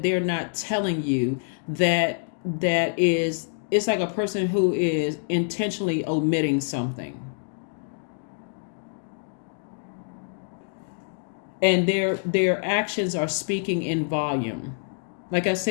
they're not telling you, that is, it's like a person who is intentionally omitting something, and their actions are speaking in volume. Like I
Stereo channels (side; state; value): right; silent; digital silence